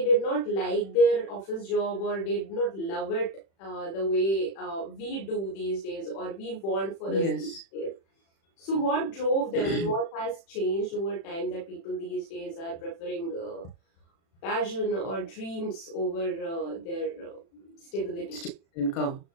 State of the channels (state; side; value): late; right; 36 ms